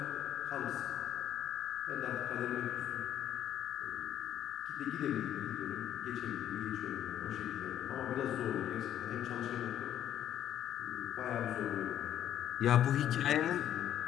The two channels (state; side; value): quieter; right; 11.1 dB